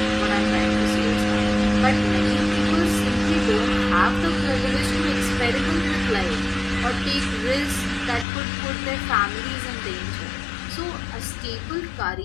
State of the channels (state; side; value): drops out; right; at 8.2 s